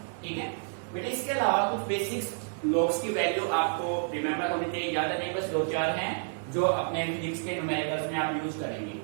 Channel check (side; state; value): left; silent; digital silence